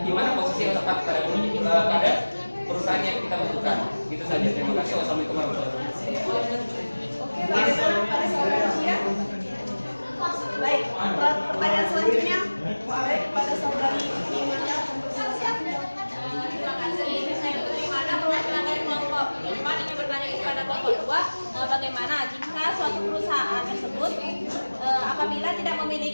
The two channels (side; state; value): both; inverted; correlation -1.00